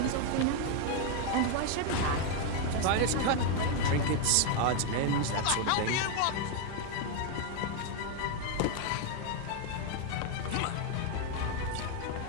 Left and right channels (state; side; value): different; both; correlation 0.01